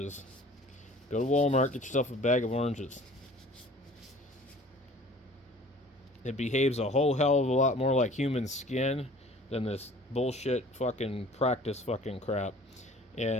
Go to Walmart, get yourself a bag of oranges. It behaves a whole hell of a lot more like human skin than this bullshit fucking practice fucking crap.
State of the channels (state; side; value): normal; both; correlation 0.48